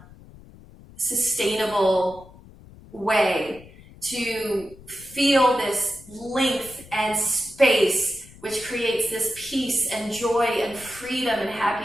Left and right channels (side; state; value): left; noise; rumble, 21 dB below the sound